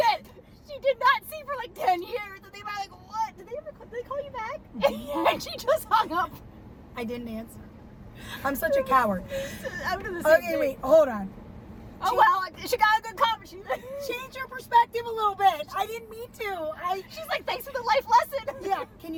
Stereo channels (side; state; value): both; identical; correlation 1.00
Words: she did not see for like 10 years. And they were like, what? Did they call you back? And she just hung up. I didn't answer. I'm such a coward. I'm doing the same thing. Wait, hold on. Oh, well, she got a good comment. Change your perspective a little bit. I didn't mean to. She's like, thanks for the life lesson. Yeah, can